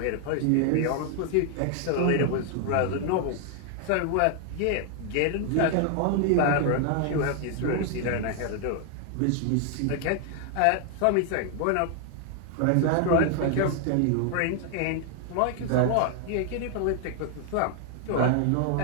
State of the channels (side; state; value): both; different; correlation 0.00